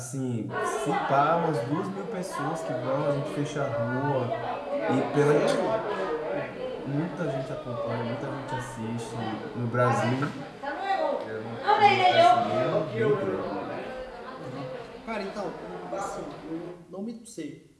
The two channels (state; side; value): identical; both; correlation 1.00